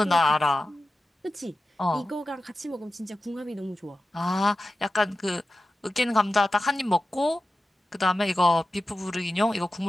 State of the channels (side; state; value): both; normal; correlation 0.94